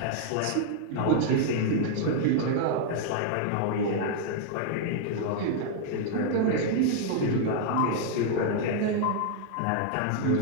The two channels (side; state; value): both; different; correlation 0.00